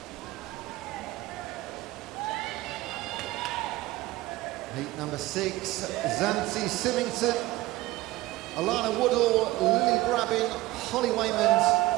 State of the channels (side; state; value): left; quieter; 18.3 dB